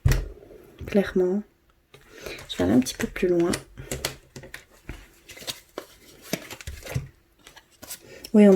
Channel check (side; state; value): both; identical; correlation 1.00